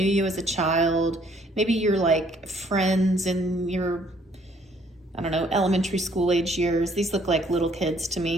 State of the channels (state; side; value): normal; both; correlation 0.63